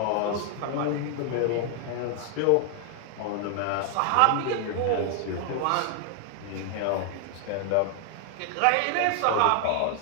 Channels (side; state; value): both; different; correlation 0.00